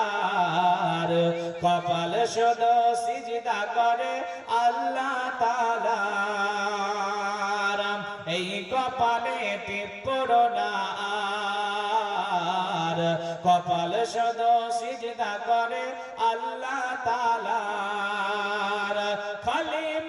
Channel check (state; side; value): identical; both; correlation 1.00